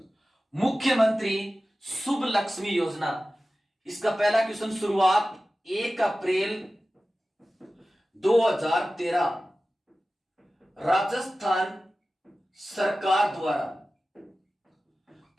मुख्यमंत्री शुभ लक्ष्मी योजना, इसका पहला क्वेश्चन शुरुआत 1 अप्रैल 2013 राजस्थान सरकार द्वारा।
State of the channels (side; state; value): both; normal; correlation 0.95